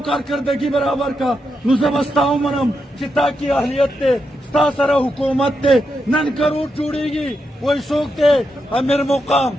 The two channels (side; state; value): both; normal; correlation 0.84